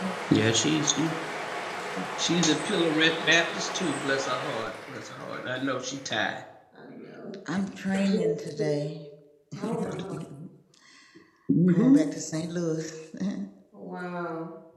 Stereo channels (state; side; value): identical; both; correlation 1.00